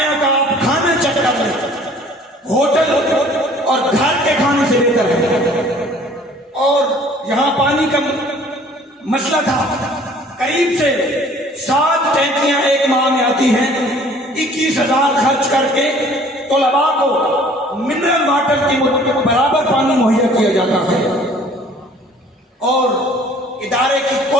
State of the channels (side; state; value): both; normal; correlation 0.53